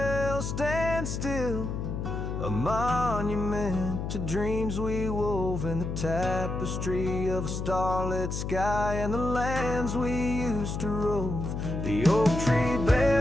stands still, a monument to dreams we wove in the tapestry of a starlit sky and the lands we used to rove. The oak tree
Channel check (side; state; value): left; noise; hum, 4 dB below the sound